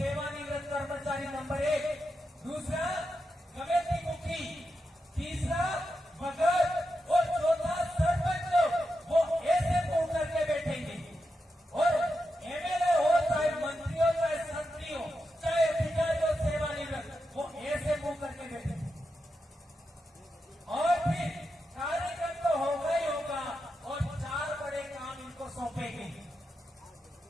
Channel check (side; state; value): both; normal; correlation 0.87